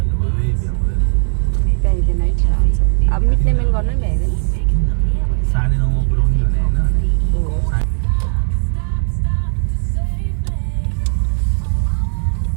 अब मिट्ने मेन गर्नु नि भ्याइँदैन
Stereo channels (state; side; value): silent; left; digital silence